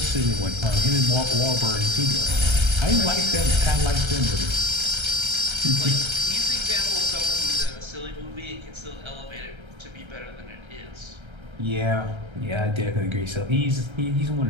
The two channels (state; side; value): late; left; 1.3 ms